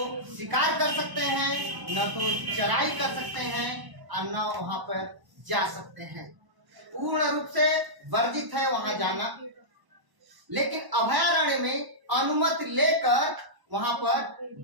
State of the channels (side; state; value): left; late; 1.0 ms